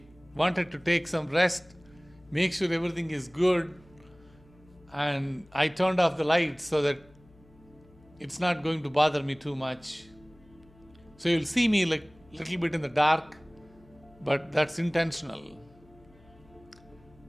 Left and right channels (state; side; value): noise; left; hum, 27 dB below the sound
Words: wanted to take some rest, make sure everything is good, and I turned off the lights so that it's not going to bother me too much. So you'll see me like a little bit in the dark, but that's intentional.